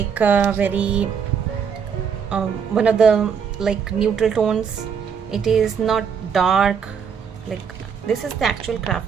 very one of the like neutral tones. It is not dark, like this is the actual craft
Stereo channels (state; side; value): quieter; left; 6.8 dB